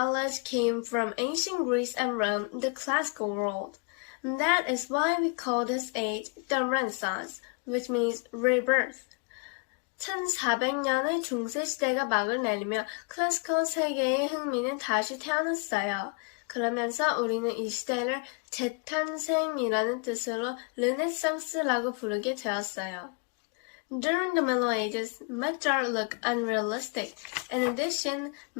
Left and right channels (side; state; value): right; quieter; 33.1 dB